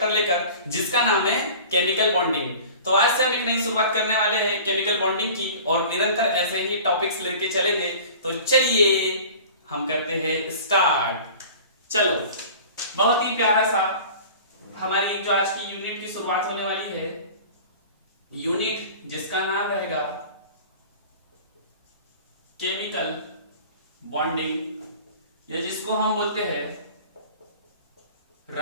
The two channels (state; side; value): inverted; both; correlation -0.42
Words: लेकर जिसका नाम है केमिकल बॉन्डिंग। तो आज से हम एक नई शुरुआत करने वाले हैं केमिकल बॉन्डिंग की और निरंतर ऐसे ही टॉपिक्स लेके चलेंगे। तो चलिए हम करते हैं स्टार्ट। चलो, बहुत ही प्यारा सा हमारी जो आज की यूनिट की शुरुआत होने वाली है, यूनिट जिसका नाम रहेगा केमिकल बॉन्डिंग या जिसको हम बोलते हैं